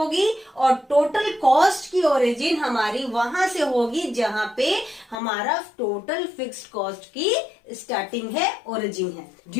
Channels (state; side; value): drops out; right; at 5.2 s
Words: और टोटल कॉस्ट की ओरिजिन हमारी वहां से होगी जहां पे हमारा टोटल फिक्स्ड कॉस्ट की स्टार्टिंग है, ओरिजिन है।